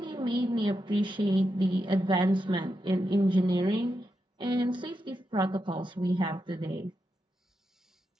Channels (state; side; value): normal; both; correlation 0.86